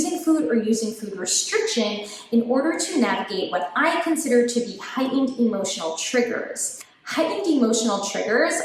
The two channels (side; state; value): both; identical; correlation 1.00